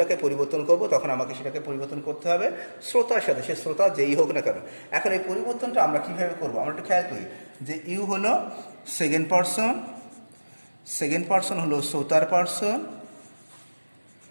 পরিবর্তন করব, তখন আমাকে সেটাকে পরিবর্তন করতে হবে শ্রোতার সাথে, সে শ্রোতা যেই হোক না কেন। এখন এই পরিবর্তনটা আমরা কীভাবে করব? আমরা একটু খেয়াল করি যে ইউ হলো সেকেন্ড পার্সন হলো শ্রোতার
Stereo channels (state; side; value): inverted; both; correlation -1.00